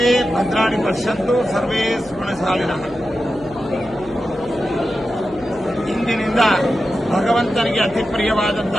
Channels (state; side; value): noise; left; hum, 21 dB below the sound